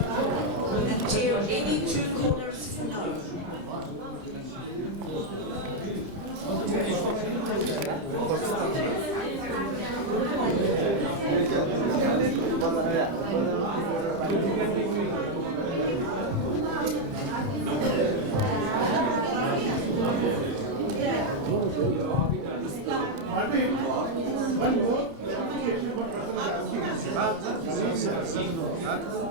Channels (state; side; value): late; left; 30 ms